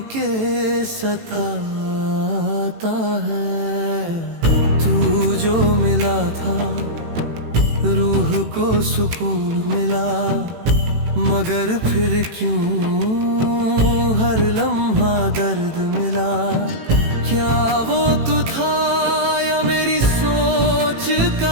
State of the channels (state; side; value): late; left; 18 ms